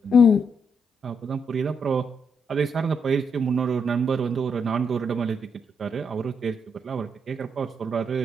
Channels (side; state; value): both; normal; correlation 0.77